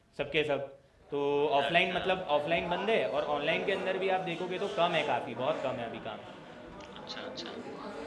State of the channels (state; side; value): identical; both; correlation 1.00